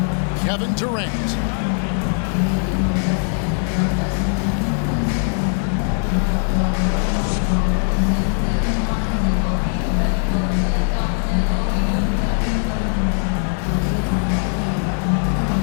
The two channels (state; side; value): silent; right; 62 dB below the other